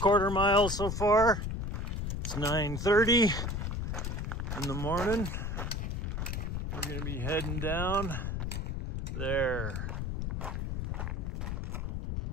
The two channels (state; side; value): noise; left; rumble, 2 dB below the sound